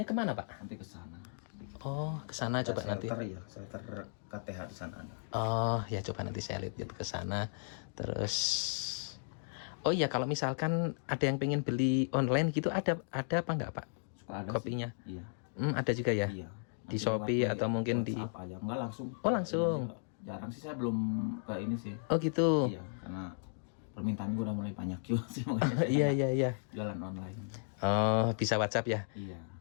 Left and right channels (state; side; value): silent; right; digital silence